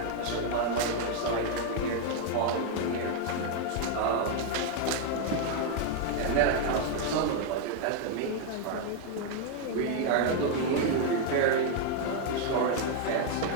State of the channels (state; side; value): different; both; correlation 0.00